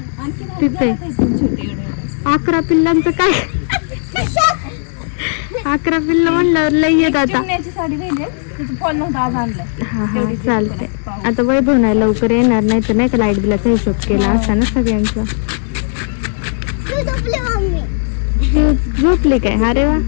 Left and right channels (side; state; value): right; silent; 69 dB below the other